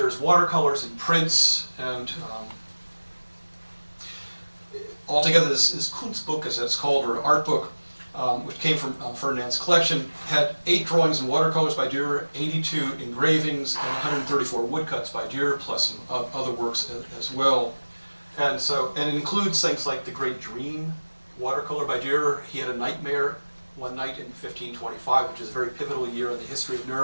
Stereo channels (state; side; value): inverted; both; correlation -1.00